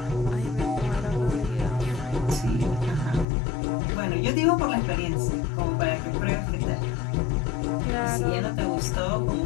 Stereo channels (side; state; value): right; drops out; at 3.2 s